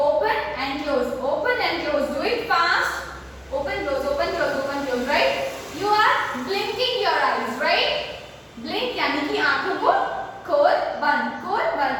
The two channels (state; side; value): identical; both; correlation 1.00